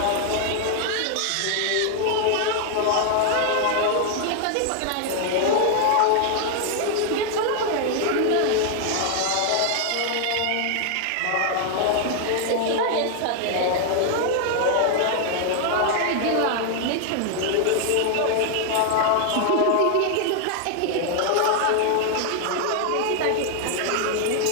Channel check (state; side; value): different; both; correlation 0.00